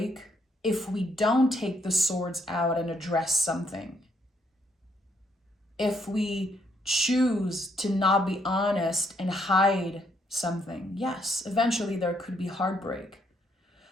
if we don't take the swords out and address something. If we choose to not be honest and hide something, yes, eventually there could be heartbreak.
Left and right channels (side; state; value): both; normal; correlation 0.72